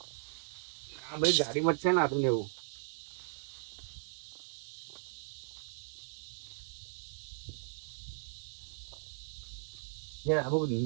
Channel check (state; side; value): silent; left; digital silence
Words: આ બધી ગાડીમાં જ છે ને આદુ ને એવું